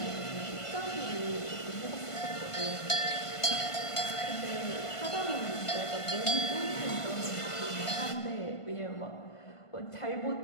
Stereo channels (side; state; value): right; late; 1.5 ms